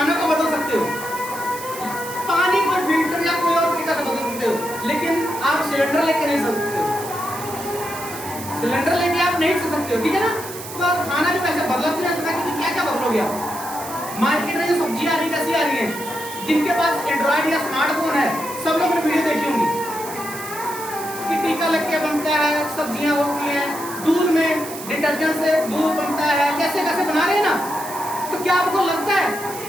को बदल सकते हो, पानी को फिल्टर या कोई और तरीका से बदल सकते हो, लेकिन आप सिलेंडर लेके नहीं चल सकते हो। सिलेंडर लेके आप नहीं चल सकते हो, ठीक है ना? तो आप खाना भी वैसे बदला तो नहीं सकता, क्योंकि क्या बदलोगे आप? मार्केट में जो सब्जियां आ रही कैसी आ रही है? जिनके पास एंड्रॉइड या स्मार्टफोन है, सब लोग ने वीडियो देखी होंगी कि टीका लग के बनता है, सब्जियां होती हैं, दूध में डिटर्जेंट से दूध बनता है, कैसे कैसे बना रहे हैं ना। तो क्या आपको लगता है,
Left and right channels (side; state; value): right; noise; hiss, 12 dB below the sound